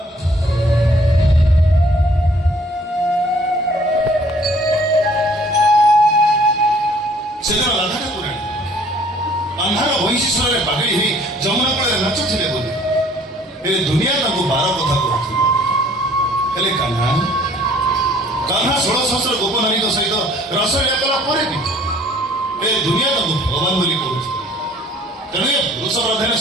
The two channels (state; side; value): normal; both; correlation 0.57